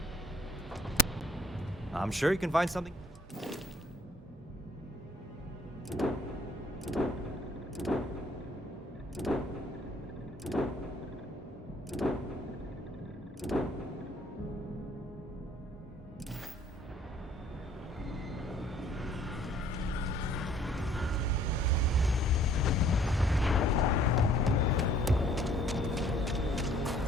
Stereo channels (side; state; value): both; normal; correlation 0.58